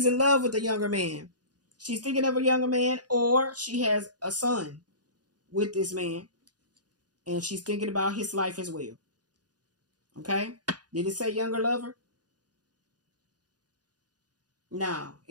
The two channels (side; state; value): left; late; 0.69 ms